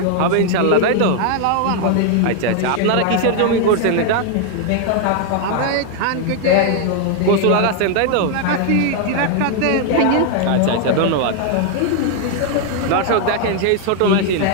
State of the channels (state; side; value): different; both; correlation 0.00